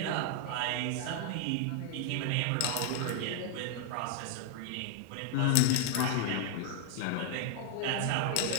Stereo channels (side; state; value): both; different; correlation 0.00